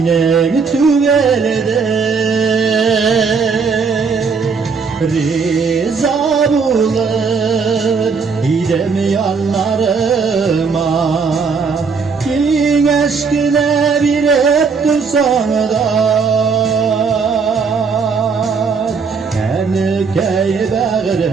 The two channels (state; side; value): quieter; left; 5.2 dB